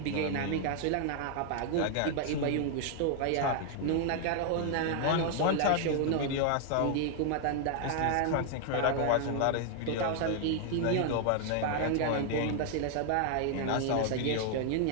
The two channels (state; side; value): different; both; correlation 0.00